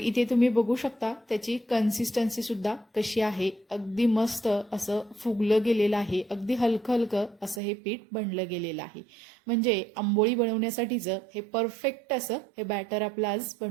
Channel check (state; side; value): drops out; left; at 7.6 s